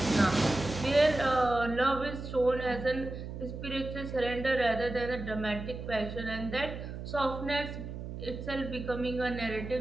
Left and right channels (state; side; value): noise; right; hum, 8 dB below the sound